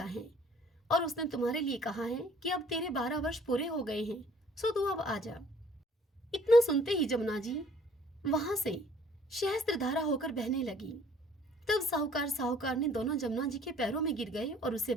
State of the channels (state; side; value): normal; both; correlation 0.57